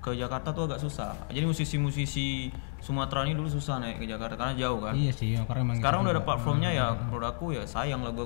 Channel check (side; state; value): right; silent; digital silence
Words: ke Jakarta tuh agak susah. Jadi musisi-musisi Sumatera ini dulu susah naik ke Jakarta karena jauh kan. Iya sih, karena emang sekarang udah ada platformnya ya. Menurut aku ya sayang lagu